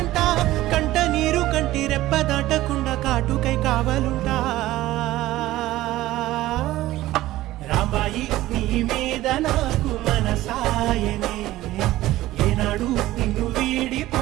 కంట నీరు కంటి రెప్ప దాటకుండా కాటుకై కావలుంటా. రాంబాయి నీ మీద నాకు మనసాయనే, ఏనాడు నిన్ను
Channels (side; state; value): left; quieter; 16.1 dB